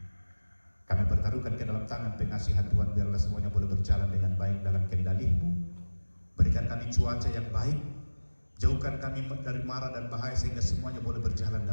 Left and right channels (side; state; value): both; inverted; correlation -1.00